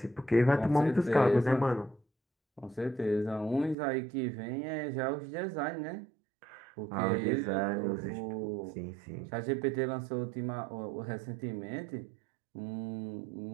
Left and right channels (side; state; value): left; drops out; at 3.8 s